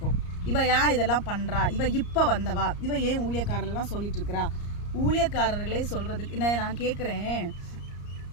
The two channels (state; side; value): late; right; 34 ms